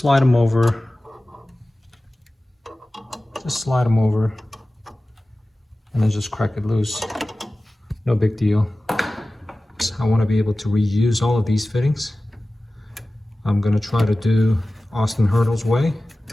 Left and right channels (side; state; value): both; normal; correlation 0.96